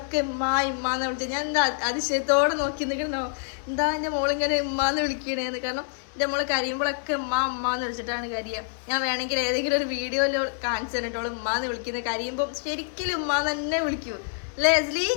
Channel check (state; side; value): silent; right; digital silence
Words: ഇമ്മാന്ന് വിളിച്ചത്. ഞാൻ എന്താ അതിശയത്തോടെ നോക്കി നിൽക്കണോ, എന്താ എൻ്റെ മോളിങ്ങനെ ഇമ്മാന്ന് വിളിക്കണേന്ന്. കാരണം എൻ്റെ മോള് കരിയുമ്പോഴൊക്കെ ഉമ്മാന്ന് വിളിച്ചിട്ടാണ് കരിയുക. ഞാൻ വേണമെങ്കിൽ ഏതെങ്കിലും ഒരു വീഡിയോയിൽ കാണിച്ചു തന്നിട്ടോളൂ ഉമ്മാന്ന് വിളിക്കുന്നത്. കരിയുമ്പോൾ ശരിക്കും ഉമ്മാന്ന് തന്നെ വിളിക്കൂ അല്ലേ എസ്ലി?